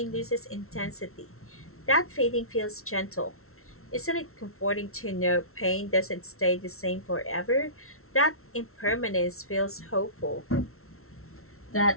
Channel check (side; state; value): right; late; 0.62 ms